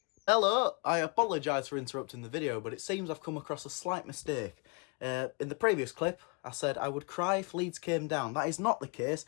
Hello, I apologise for interrupting the video, but it seems I've come across a slight mistake. In the previous clip, I said I would cry if Leeds came down. That is not the case.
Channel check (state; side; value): quieter; right; 33.1 dB